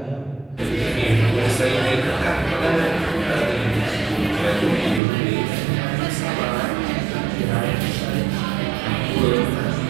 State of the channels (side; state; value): left; drops out; at 5.0 s